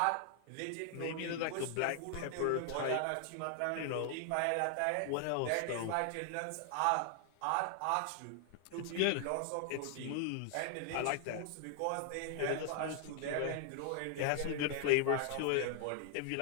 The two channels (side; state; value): both; different; correlation 0.00